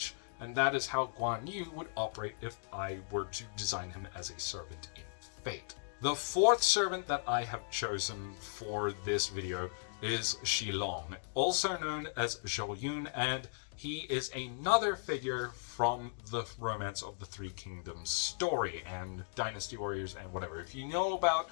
And that is how Guan Yu would operate if I were to design him as a servant in Fate. The fourth servant that I have chosen for this video is Shilong, also known as Zhou Yun, and he is another figure from the Romance of the Three Kingdoms story and Dynasty Warriors and whatever. If you know about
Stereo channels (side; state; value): right; silent; digital silence